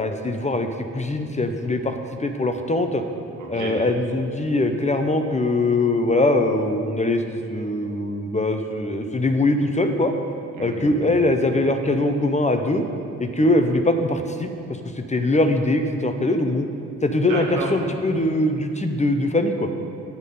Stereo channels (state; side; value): normal; both; correlation 0.54